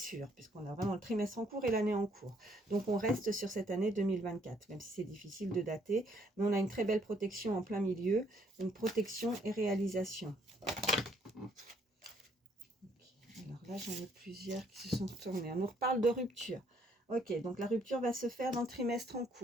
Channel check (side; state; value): both; normal; correlation 0.67